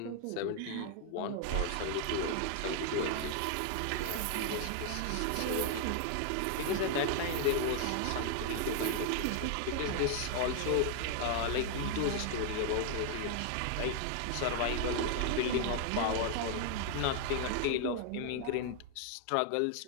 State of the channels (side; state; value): both; different; correlation 0.00